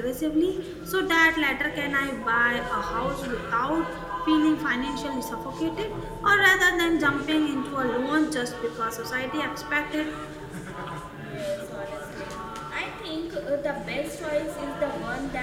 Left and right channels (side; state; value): both; identical; correlation 1.00